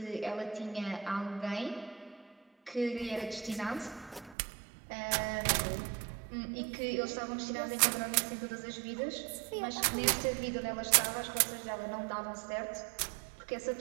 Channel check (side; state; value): left; drops out; at 4.4 s